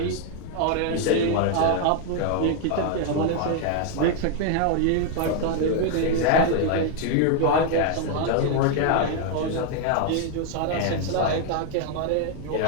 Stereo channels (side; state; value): both; different; correlation 0.00